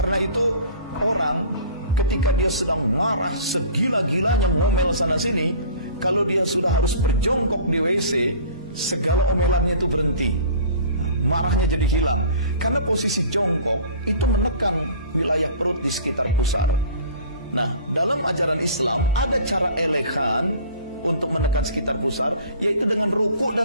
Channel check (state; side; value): inverted; both; correlation -0.45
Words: itu orang ketika dia sedang marah segila-gilanya ngomel sana sini, kalau dia sudah harus berjongkok di WC, segala omelannya itu berhenti. Marahnya jadi hilang. Karena posisi jongkok itu menekan wilayah perut di sekitar pusar. Nah, dalam ajaran Islam ada cara elegan untuk menekan sekitar pusar, yaitu dengan ruku